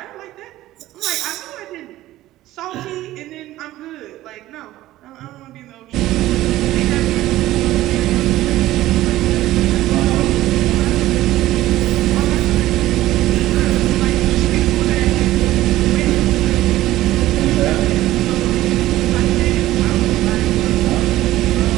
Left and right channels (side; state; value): left; quieter; 15.5 dB